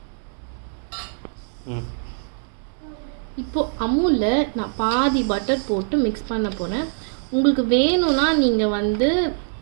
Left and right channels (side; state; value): left; silent; digital silence